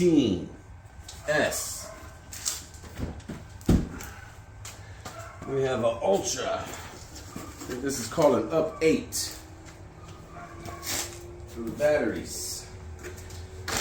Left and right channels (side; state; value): both; identical; correlation 1.00